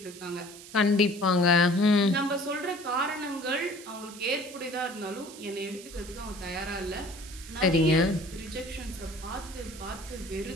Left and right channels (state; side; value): noise; right; hiss, 16 dB below the sound